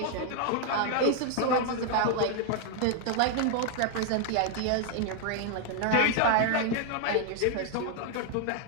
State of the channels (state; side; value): different; both; correlation 0.00